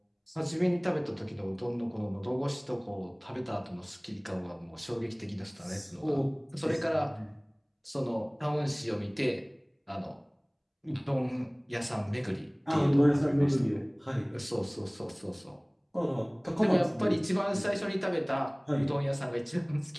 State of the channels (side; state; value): both; identical; correlation 1.00